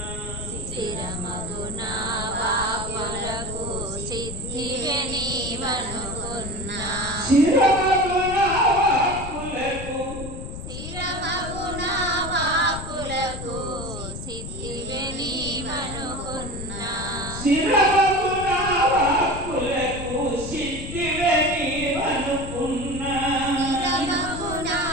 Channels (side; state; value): left; noise; rumble, 8 dB below the sound